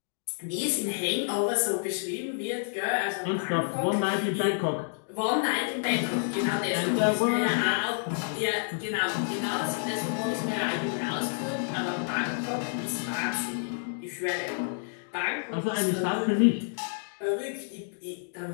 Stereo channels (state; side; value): silent; right; digital silence